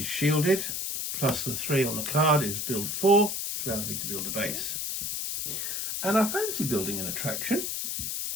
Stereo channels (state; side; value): noise; left; hiss, 2 dB below the sound